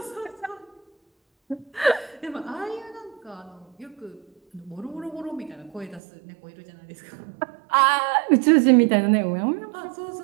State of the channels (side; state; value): left; drops out; at 6.0 s